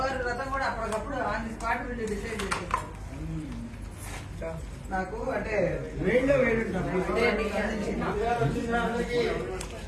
వ్రతం కూడా అప్పటికప్పుడు ఆన్ ది స్పాట్ నుండి డిసైడ్ చేసేసాం. నాకు అంటే వేడిలో వేడి ఉంటాను.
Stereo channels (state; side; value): identical; both; correlation 1.00